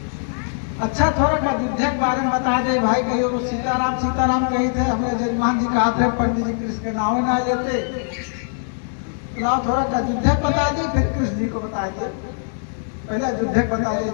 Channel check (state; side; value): silent; right; 65 dB below the other